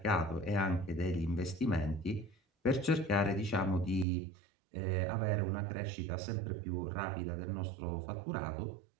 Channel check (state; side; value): drops out; left; at 4.0 s